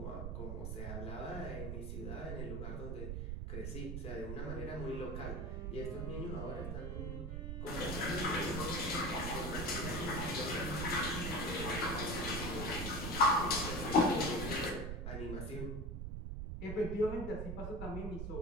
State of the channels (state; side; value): noise; right; rumble, 4 dB below the sound